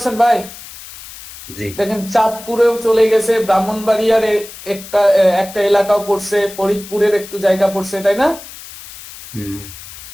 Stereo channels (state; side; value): noise; left; hiss, 16 dB below the sound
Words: ভাই? দেখেন চাঁদপুরেও চলে গেছে, ব্রাহ্মণবাড়িয়ার একটা এলাকাও পড়ছে, ফরিদপুরের একটু জায়গা পড়ছে, তাই না?